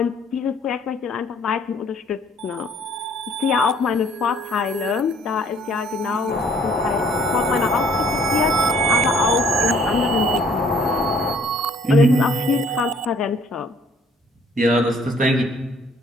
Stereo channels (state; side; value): normal; both; correlation 0.60